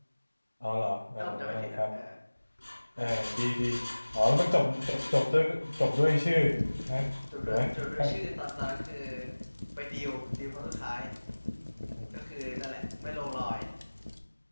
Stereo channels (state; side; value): inverted; both; correlation -1.00